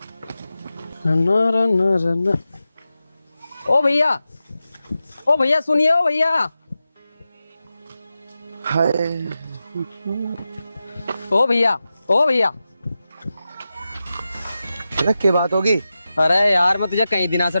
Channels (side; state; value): both; inverted; correlation -0.92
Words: ओ भैया, ओ भैया सुनिए, ओ भैया। हाय, ओ भैया, ओ भैया। अरे क्या बात होगी? अरे यार मैं तुझे कई दिनों से